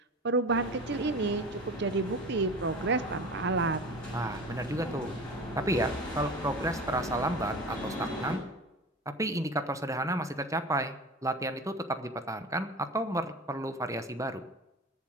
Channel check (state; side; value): normal; both; correlation 0.34